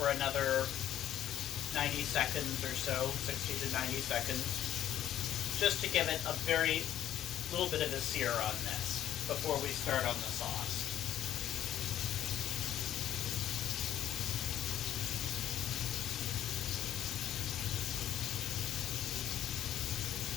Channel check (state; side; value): quieter; right; 11.6 dB